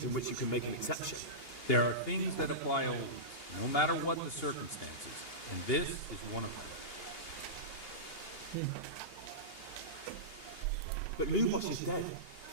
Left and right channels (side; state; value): right; late; 2.8 ms